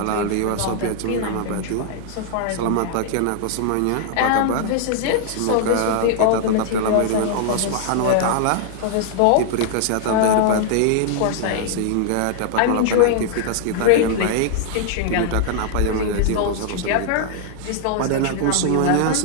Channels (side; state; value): both; different; correlation -0.01